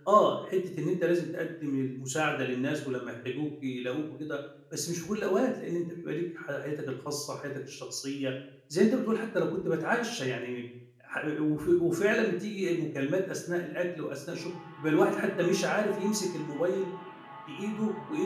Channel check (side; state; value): both; identical; correlation 1.00